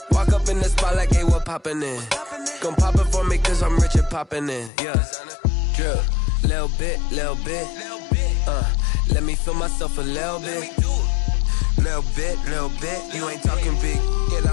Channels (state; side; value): drops out; right; at 4.7 s